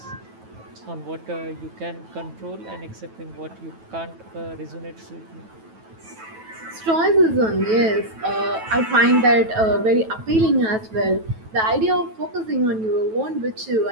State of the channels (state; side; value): late; left; 9.2 ms